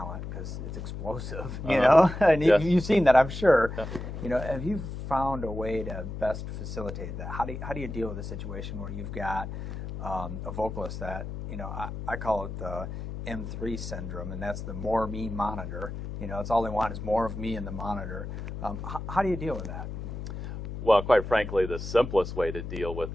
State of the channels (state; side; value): noise; left; hum, 7 dB below the sound